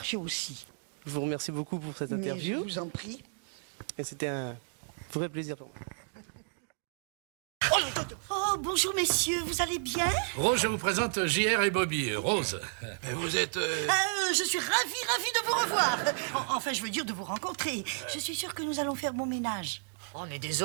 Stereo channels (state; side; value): silent; left; digital silence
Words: aussi. Je vous remercie beaucoup pour cette Mais interview. je vous en prie. Et c'était un vrai plaisir pour moi. Oh, bonjour messieurs, vous allez bien? Rose, je vous présente JR et Bobby. Rose, vous êtes... Je suis ravie de vous revoir. Enfin, je veux dire de vous rencontrer. Je suis sûre que nous allons faire bon ménage. On est